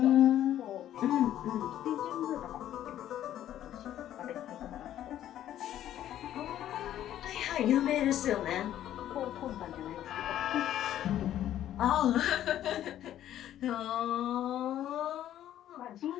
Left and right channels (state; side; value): quieter; right; 11.9 dB